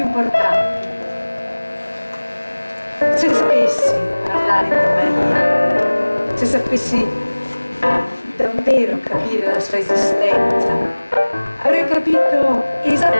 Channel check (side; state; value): both; inverted; correlation -1.00